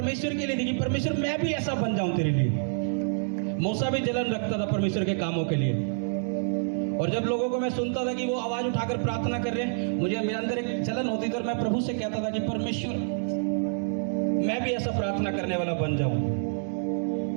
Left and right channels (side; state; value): left; silent; digital silence